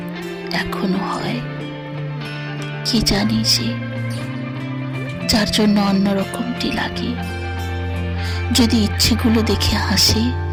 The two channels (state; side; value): identical; both; correlation 1.00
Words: এখনো হয়। কি জানি সে, যার জন্য অন্যরকমটি লাগে। যদি ইচ্ছেগুলো দেখে হাসে,